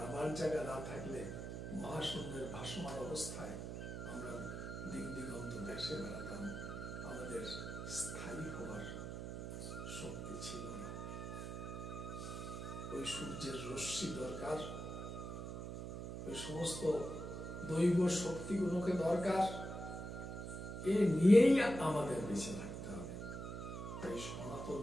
জায়গা না থাকলে মহাশূন্যের ভাসমান অবস্থায় আমরা দিক দিগন্ত দেশে বেড়াতাম, আমাদের স্থায়ী হওয়ার শক্তি ছিল না। ওই সূর্যের রশ্মি দরকার, ওই সমস্ত দৈব শক্তিগুলোকে দরকার, এ নিয়েই আমাদের বেঁচে থাকতে হবে। তাই সনাতন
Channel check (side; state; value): right; noise; hum, 6 dB below the sound